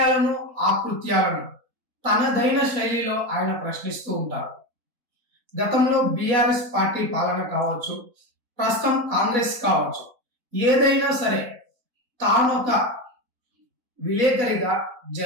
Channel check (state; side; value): late; left; 4.0 ms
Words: ఆకృత్యాలను తనదైన శైలిలో ఆయన ప్రశ్నిస్తూ ఉంటారు. గతంలో బీఆర్ఎస్ పార్టీ పాలన కావచ్చు, ప్రస్తుతం కాంగ్రెస్ కావచ్చు, ఏదైనా సరే తానొక విలేకరిగా